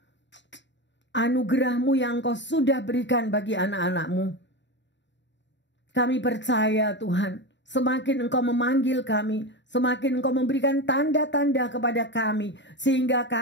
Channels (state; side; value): late; right; 0.52 ms